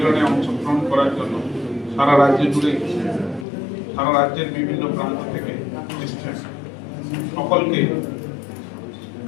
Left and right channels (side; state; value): right; drops out; at 3.5 s